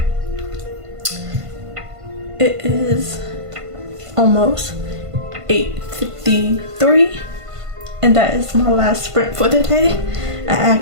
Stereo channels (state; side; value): late; left; 1.5 ms